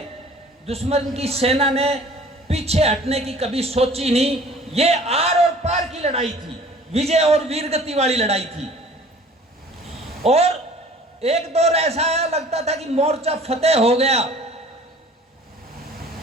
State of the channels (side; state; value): both; normal; correlation 0.49